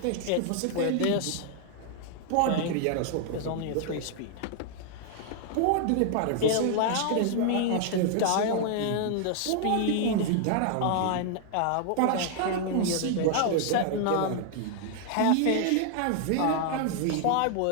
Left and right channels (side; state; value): both; different; correlation 0.00